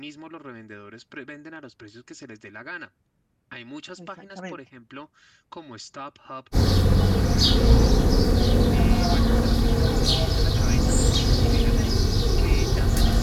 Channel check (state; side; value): identical; both; correlation 1.00